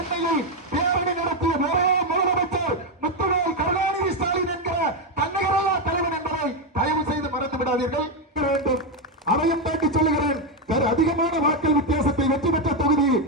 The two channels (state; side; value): normal; both; correlation 0.05